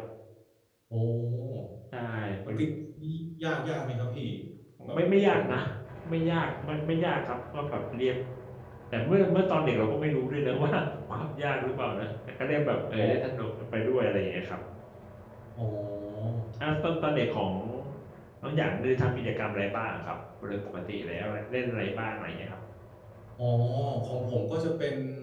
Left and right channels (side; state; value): both; identical; correlation 1.00